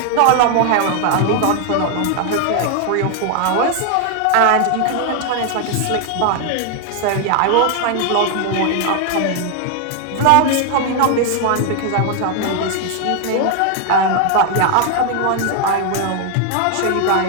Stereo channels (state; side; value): different; both; correlation 0.00